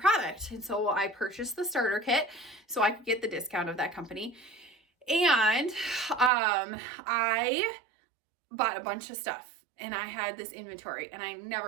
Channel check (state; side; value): drops out; left; at 6.3 s